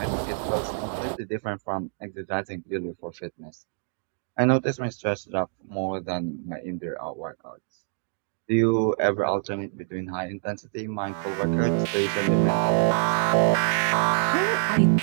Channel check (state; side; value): silent; left; digital silence